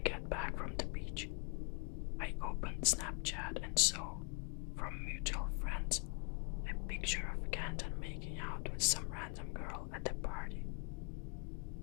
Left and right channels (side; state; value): right; quieter; 36.1 dB